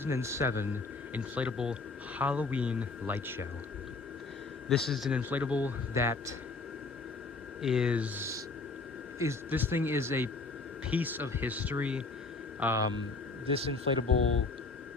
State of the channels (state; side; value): quieter; right; 3.8 dB